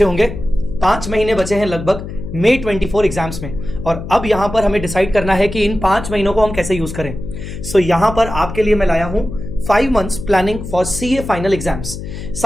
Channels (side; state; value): left; noise; hum, 9 dB below the sound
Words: होंगे। 5 महीने बचे हैं लगभग मई 24 एग्जाम्स में, और अब यहां पर हमें डिसाइड करना है कि इन 5 महीनों को हम कैसे यूज करें। सो यहां पर आपके लिए मैं लाया हूं 5 months planning for CA final exams.